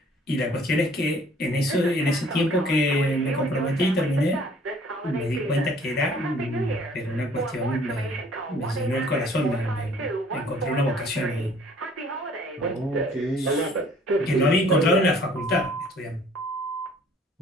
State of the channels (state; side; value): normal; both; correlation 0.56